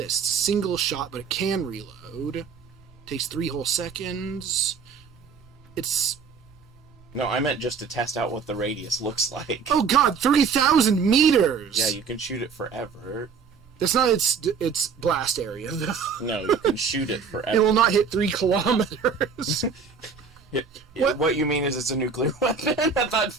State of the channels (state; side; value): quieter; left; 5.7 dB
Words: It's a single shot, but it can reload. Takes 3 whole seconds. It's No, I meant just to test out what the radius looks like. oh god, 3,000 meters. Yeah, you can shoot it forever. That's not its blast area though. No, you can shoot it It forever. will not hit 3 kilometers. What you mean is it's a nuclear weapon at that